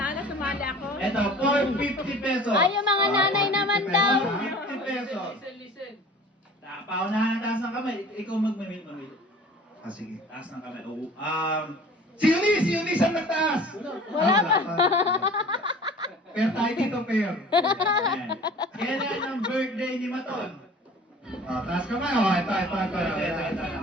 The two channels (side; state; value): both; normal; correlation 0.44